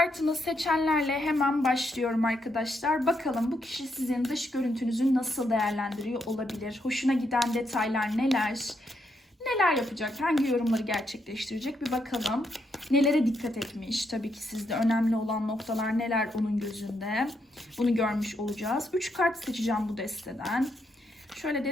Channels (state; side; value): normal; both; correlation 0.78